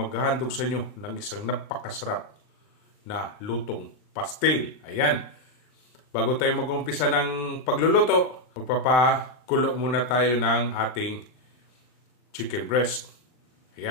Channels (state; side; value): late; right; 39 ms